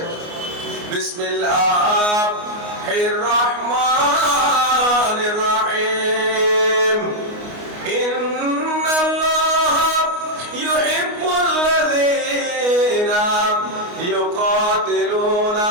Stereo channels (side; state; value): left; late; 29 ms